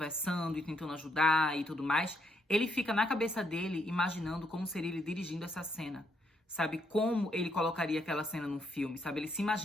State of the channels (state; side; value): normal; both; correlation 0.75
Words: e tentando ajudar e tudo mais, ele fica na cabeça dele imaginando como seria ele dirigindo essa cena. Sabe, como ele colocaria aquela cena num filme, sabe? Ele se